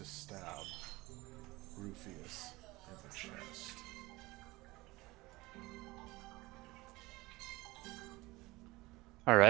stab Rufius in the chest. All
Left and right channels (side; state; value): left; quieter; 21.1 dB